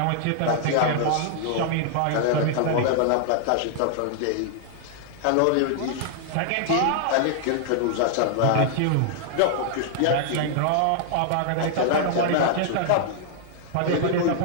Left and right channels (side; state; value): both; different; correlation -0.01